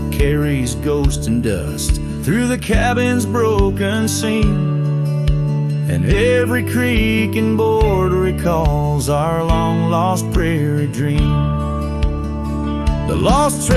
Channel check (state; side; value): identical; both; correlation 1.00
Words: carries ghost and dust through the cabin's broken seam, and every creak and board recalls our long-lost prairie dream. The lost